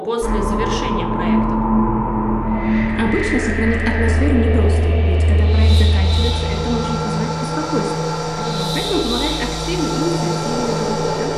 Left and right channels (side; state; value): both; identical; correlation 1.00